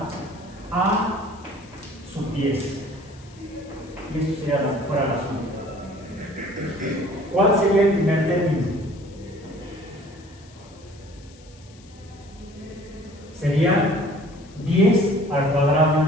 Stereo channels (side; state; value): left; noise; hiss, 26 dB below the sound